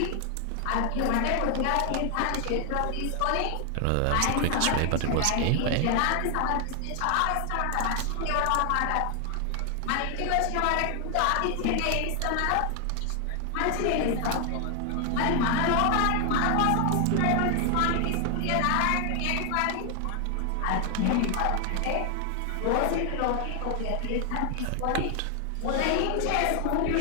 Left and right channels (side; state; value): both; different; correlation 0.00